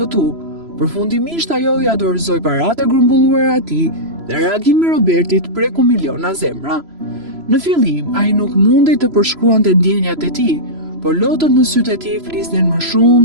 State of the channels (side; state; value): left; late; 3.0 ms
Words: përfundimisht ajo ja dorëzoi paratë e grumbulluara atij dhe reagimi i Robertit preku miliona zemra. Në fillim, ai nuk mundej të përshkruante ndjenjat e tij, por lotët në sytë e tij flisnin më